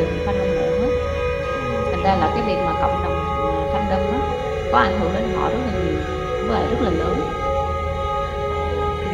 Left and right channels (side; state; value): both; identical; correlation 1.00